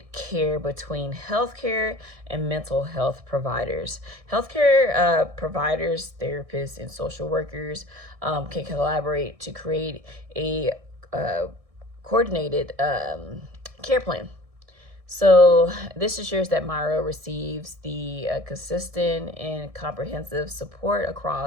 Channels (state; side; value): late; left; 1.6 ms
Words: care between healthcare and mental health providers. Healthcare providers, therapists, and social workers can collaborate to create a coordinated care plan. So this ensures that Myra receives the consistent and comprehensive support